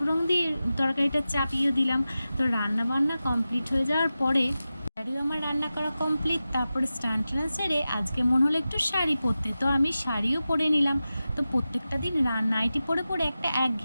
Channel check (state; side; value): inverted; both; correlation -0.94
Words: দিয়ে তরকারিটা চাপিয়ে দিলাম। তো রান্না বান্না কমপ্লিট হয়ে যাওয়ার পরে আমার রান্না করা কমপ্লিট, তারপরে স্নান টান সেরে আজকে মনে হলো একটু শাড়ি পরতে, তো আমি শাড়িও পরে নিলাম। তো প্রত্যেকটা দিন নাইটি পরে পরে একটা